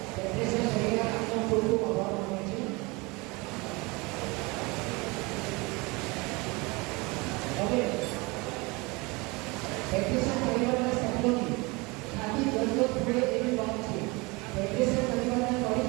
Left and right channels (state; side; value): quieter; left; 25.8 dB